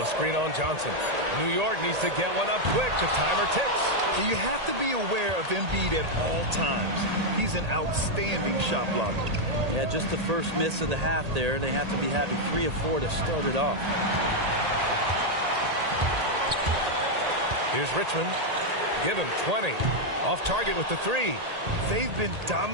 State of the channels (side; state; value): left; late; 1.8 ms